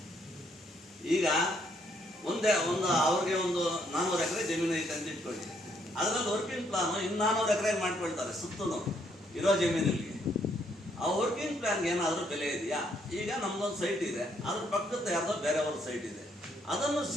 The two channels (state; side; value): normal; both; correlation 0.71